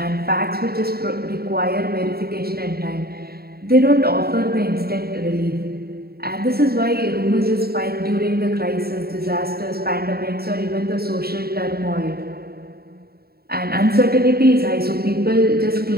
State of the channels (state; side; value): late; left; 0.45 ms